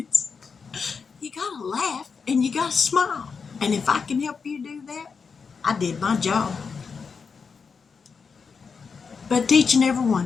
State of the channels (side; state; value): right; quieter; 5.5 dB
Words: you gotta laugh and you gotta smile. And if I can help you do that, I did my job. But to each and every